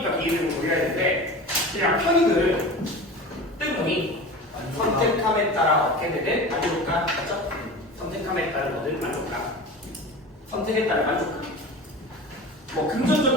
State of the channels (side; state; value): both; normal; correlation 0.33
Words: 기회비용을 고려해야 되는데 그냥 편익을 뜬금이 선택함에 따라 얻게 되는 만족감, 맞죠? 선택함에 따른 얻은 만족감. 선택에 따른 만족감. 뭐